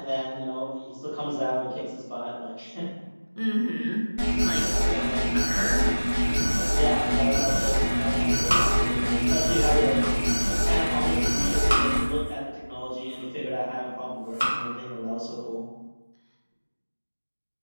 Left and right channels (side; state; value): both; inverted; correlation -1.00